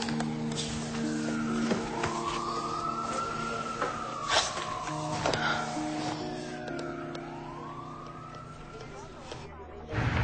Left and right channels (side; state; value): both; identical; correlation 1.00